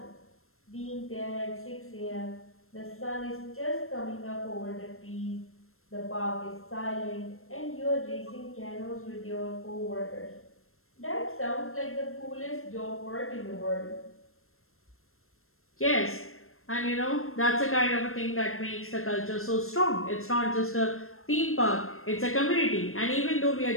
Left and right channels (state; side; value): late; right; 0.62 ms